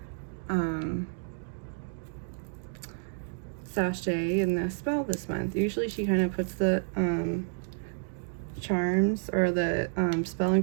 sachet in the spell this month. Usually she kind of puts the charms or the spell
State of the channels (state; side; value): silent; left; digital silence